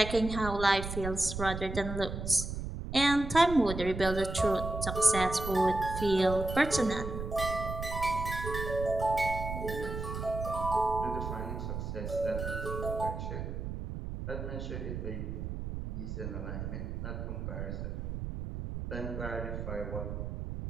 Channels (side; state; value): right; noise; rumble, 5 dB below the sound